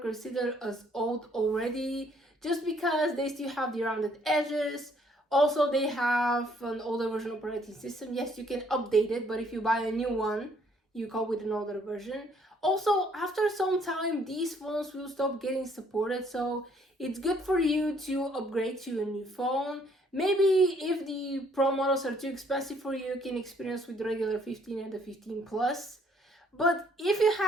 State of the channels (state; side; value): normal; both; correlation 0.64